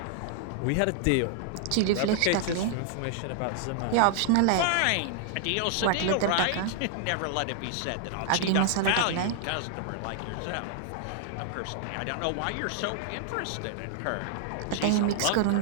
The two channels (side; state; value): both; different; correlation 0.00